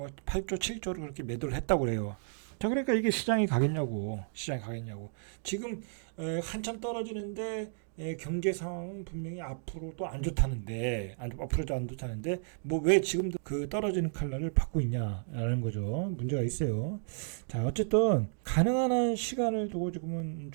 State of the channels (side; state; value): left; silent; digital silence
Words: 8조, 7조를 그렇게 매도를 했다고 그래요. 자, 그러니까 이게 시장이 가겠냐고. 지금 한참 떨어지는데 경제 상황은 분명히 앞으로도 안 좋다는데, 앞으로도 안 좋다는데, 뭐 왜 지금도 그 떨어지는 칼날을 받고 있냐라는 거죠. 문제가 있어요. 자, 어쨌든 가능한 한 시간을 두고 지금은